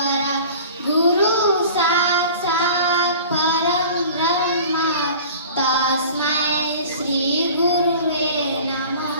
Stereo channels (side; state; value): both; inverted; correlation -0.42